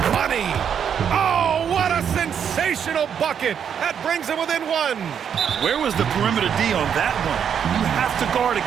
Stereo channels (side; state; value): left; quieter; 8.0 dB